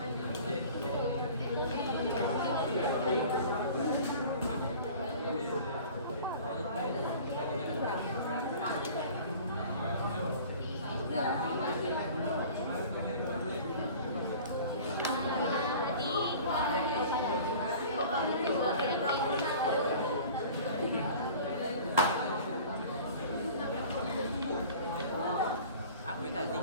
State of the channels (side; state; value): both; inverted; correlation -0.44